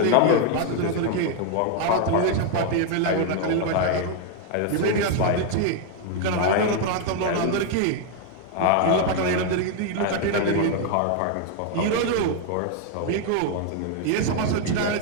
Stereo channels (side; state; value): both; different; correlation 0.01